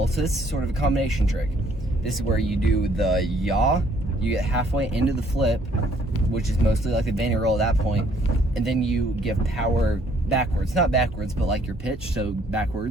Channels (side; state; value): both; normal; correlation 0.64